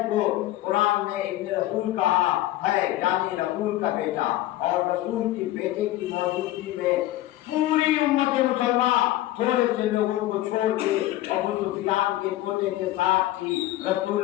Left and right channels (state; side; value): quieter; right; 15.4 dB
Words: کو قرآن نے ابن رسول کہا ہے، یعنی رسول کا بیٹا، اور رسول کے بیٹے کی موجودگی میں پوری امت مسلمان تھوڑے سے لوگوں کو چھوڑ کے ابو سفیان کے پوتے کے ساتھ تھی۔